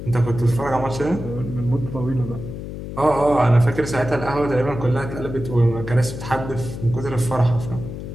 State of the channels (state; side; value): noise; left; hum, 9 dB below the sound